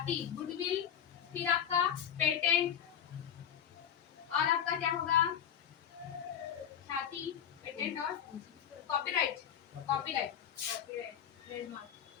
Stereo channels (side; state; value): right; quieter; 9.1 dB